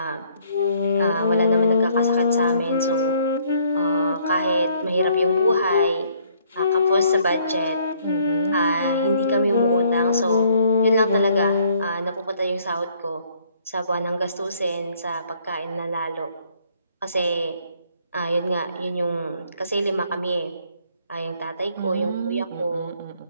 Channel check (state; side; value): inverted; both; correlation -0.64